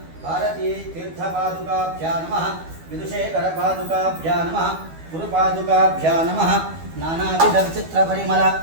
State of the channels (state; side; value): late; left; 12 ms